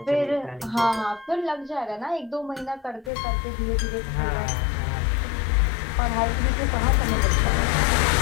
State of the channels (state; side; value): drops out; right; at 3.1 s